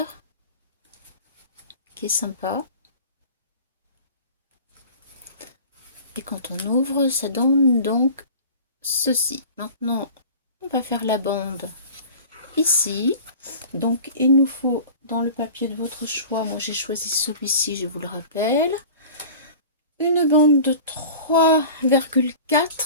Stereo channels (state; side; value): inverted; both; correlation -0.40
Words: qui est sympa. Et quand on ouvre, ça donne donc ceci. Maintenant, on va faire la bande ici. Donc, il nous faut dans le papier de votre choix, moi j'ai choisi celui-ci, je vous le rappelle, une bande de